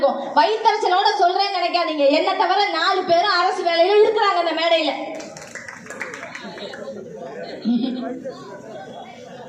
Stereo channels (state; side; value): identical; both; correlation 1.00